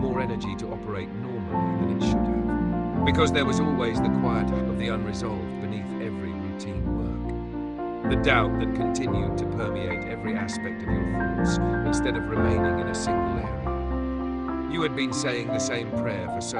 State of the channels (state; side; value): identical; both; correlation 1.00